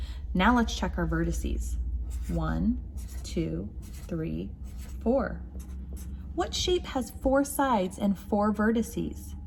Now let's check our vertices. 1, 2, 3, 4. What shape has 4 sides and 4 vertices?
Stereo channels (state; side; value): identical; both; correlation 1.00